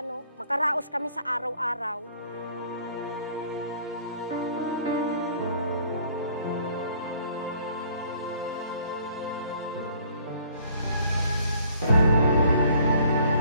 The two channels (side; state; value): both; inverted; correlation -0.58